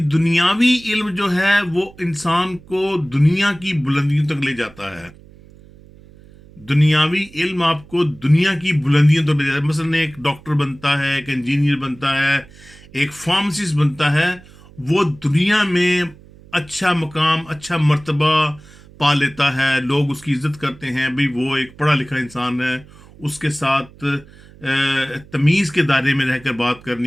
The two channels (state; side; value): noise; right; hum, 23 dB below the sound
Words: دنیاوی علم جو ہے وہ انسان کو دنیا کی بلندیوں تک لے جاتا ہے. دنیاوی علم آپ کو دنیا کی بلندیوں تک لے جاتا ہے. مثلا ایک ڈاکٹر بنتا ہے، ایک انجینئر بنتا ہے، ایک فارماسسٹ بنتا ہے، وہ دنیا میں اچھا مقام، اچھا مرتبہ پا لیتا ہے، لوگ اس کی عزت کرتے ہیں، بھئی وہ ایک پڑھا لکھا انسان ہے، اس کے ساتھ تمیز کے دائرے میں رہ کر بات